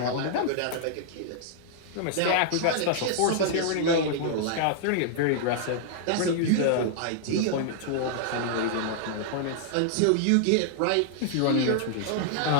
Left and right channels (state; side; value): different; both; correlation -0.01